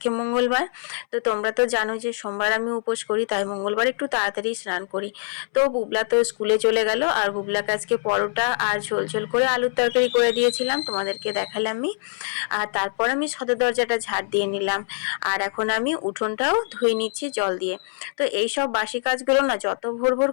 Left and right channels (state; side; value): silent; right; 63 dB below the other